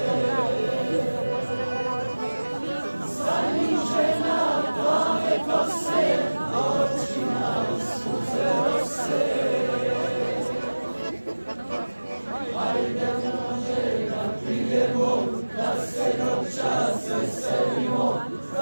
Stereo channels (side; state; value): both; inverted; correlation -1.00